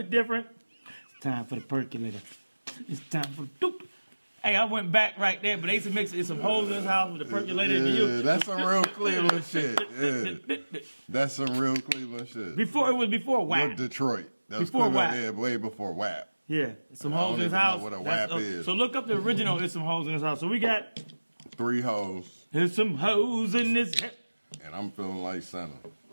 different. It's time for the percolator. It's time for the doop. Hey, I went back right there, but they used to mix it. It's some hoes in this house with the percolator. Yeah, that's some real Cleveland shit. Yeah. That's some real Cleveland shit. It was before WAP. You're Detroit. That was Before WAP. Yeah, way before WAP. Yeah, some I hoes don't in his even house. know what a WAP is. So look up the original. It's some hoes in his house. So we got 3 hoes. There's some hoes in this. And I'm feeling like Santa.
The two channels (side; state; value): both; inverted; correlation -1.00